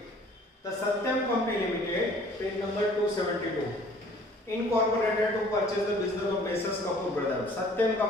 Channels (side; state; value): both; normal; correlation 0.53